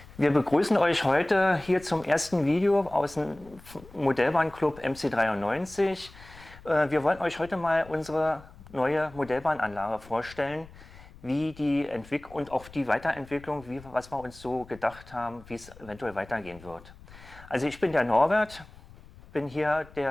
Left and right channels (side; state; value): left; noise; rumble, 21 dB below the sound